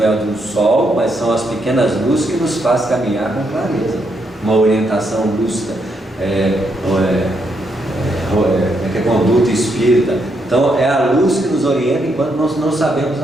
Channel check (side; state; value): both; normal; correlation 0.78